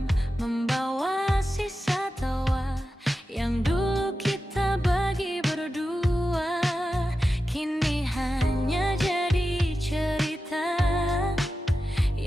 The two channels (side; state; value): both; normal; correlation 0.92